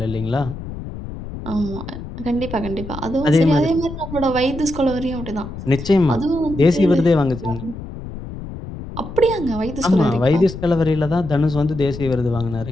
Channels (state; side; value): noise; left; rumble, 10 dB below the sound